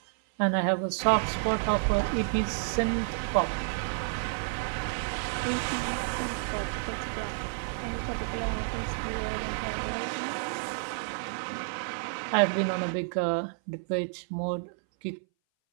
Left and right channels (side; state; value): left; silent; 58 dB below the other